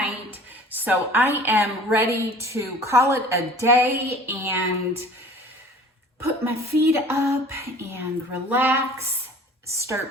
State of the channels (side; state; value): both; normal; correlation 0.46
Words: so I am ready to call it a day and put my feet up and relax.